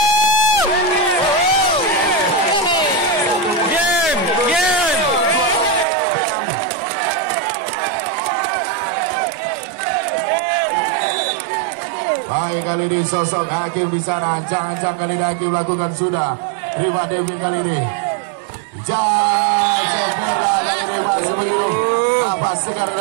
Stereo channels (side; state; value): left; drops out; at 5.9 s